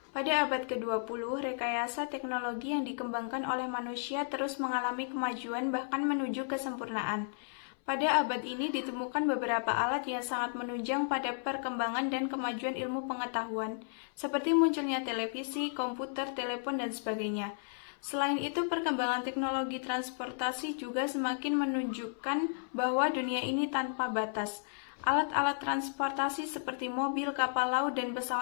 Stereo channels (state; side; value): silent; right; 55 dB below the other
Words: Pada abad ke-20, rekayasa teknologi yang dikembangkan oleh manusia terus mengalami kemajuan bahkan menuju kesempurnaan. Pada abad ini ditemukan beberapa alat yang sangat menunjang pada perkembangan dan kemajuan ilmu pengetahuan, seperti munculnya televisi, komputer, telepon, dan sebagainya. Selain itu, perkembangan teknologi transportasi juga semakin menunjukkan bahwa dunia ini tanpa batas. Alat-alat transportasi seperti mobil, kapal laut, dan